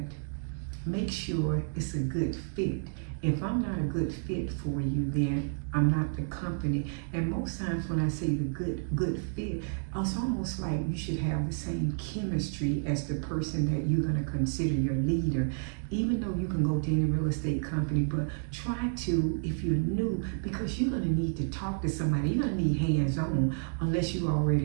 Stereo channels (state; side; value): silent; left; digital silence